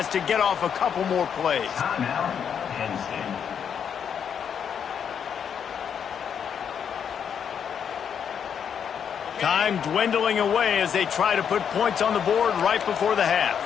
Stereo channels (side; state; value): right; quieter; 7.8 dB